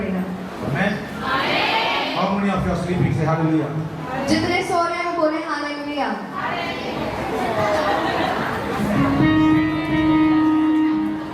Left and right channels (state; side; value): identical; both; correlation 1.00